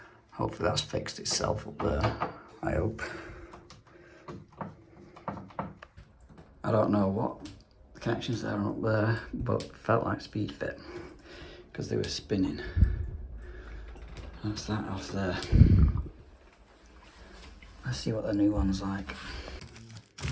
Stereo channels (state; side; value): identical; both; correlation 1.00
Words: Hopefully that's fixed itself up there, I hope. I don't know what the connections there are up there, but felt like speed fit because they were spinning. That's that off there. Let's see what the new one's like.